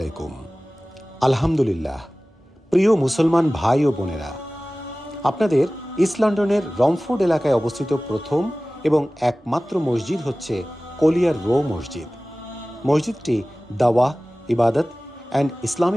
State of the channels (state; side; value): normal; both; correlation 0.97